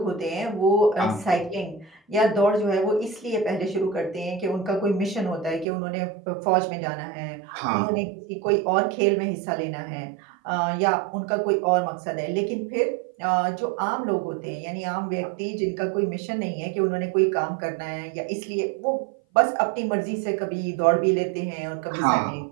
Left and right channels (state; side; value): drops out; left; at 5.7 s